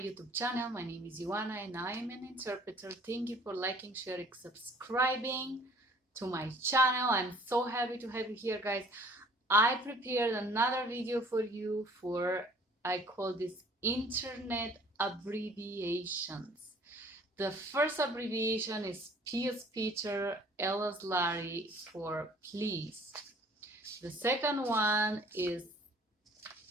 channel. My name is Ioana and I am an interpreter. Thank you for liking, sharing, subscribing to my channel. I'm so happy to have you here, guys. I prepared another video for you I call this internet abbreviations. The first abbreviation is P as Peter, L as Larry for please. The second one is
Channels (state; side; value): normal; both; correlation 0.54